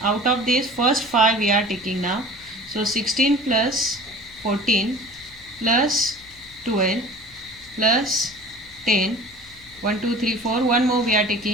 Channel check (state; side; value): noise; left; hum, 25 dB below the sound